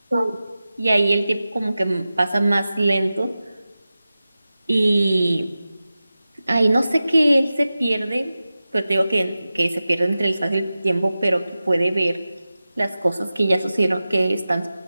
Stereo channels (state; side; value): inverted; both; correlation -0.95